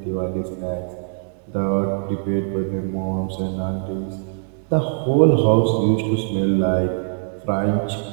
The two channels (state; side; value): silent; left; 64 dB below the other